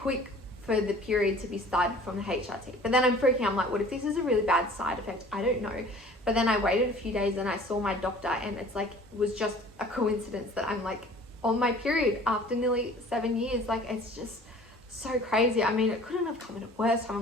for the period to be started from the HRT. But then I'm freaking out, I'm like, what if this is a really bad side effect? I don't know. But But then I waited a few days and I saw my doctor, and it's like, it was just a coincidence that I'm like on my period after nearly 7 years. Like, it's just so crazy. I mean, it couldn't have come at a worse time.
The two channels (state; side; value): normal; both; correlation 0.48